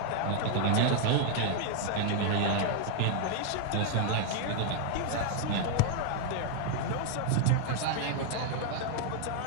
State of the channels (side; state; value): both; different; correlation 0.00